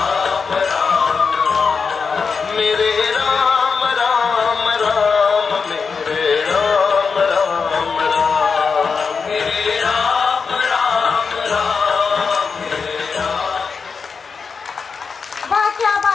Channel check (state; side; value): quieter; right; 5.3 dB